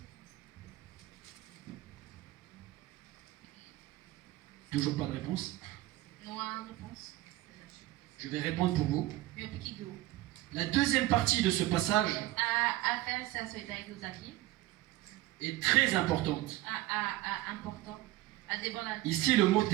Toujours pas de réponse? Je vais répondre pour vous. La deuxième partie de ce passage est très importante. Ici, le mot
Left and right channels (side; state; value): left; quieter; 16.8 dB